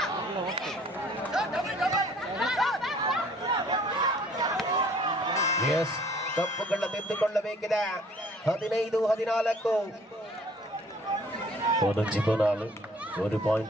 ಎಸ್, ತಪ್ಪುಗಳ ತಿದ್ದುಕೊಳ್ಳಬೇಕಿದೆ. 15-14 1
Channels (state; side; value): normal; both; correlation 0.56